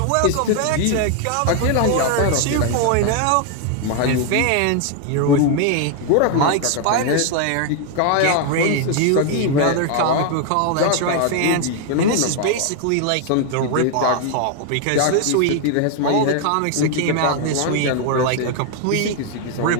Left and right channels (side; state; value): both; different; correlation 0.00